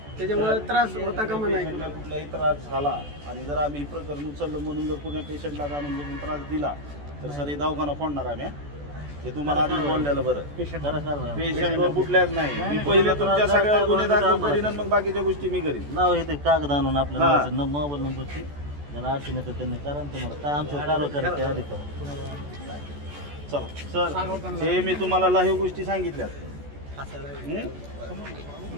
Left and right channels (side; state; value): left; late; 14 ms